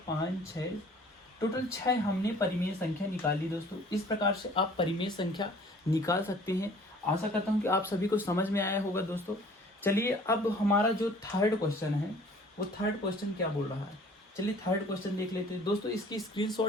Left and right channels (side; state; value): both; normal; correlation 0.52